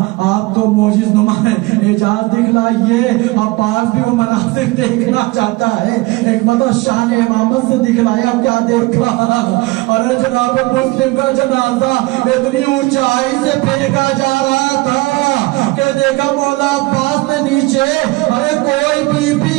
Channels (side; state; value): left; quieter; 22.0 dB